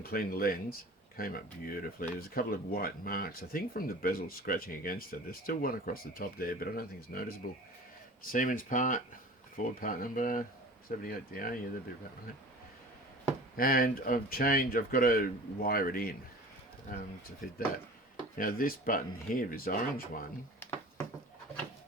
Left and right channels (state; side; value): normal; both; correlation 0.40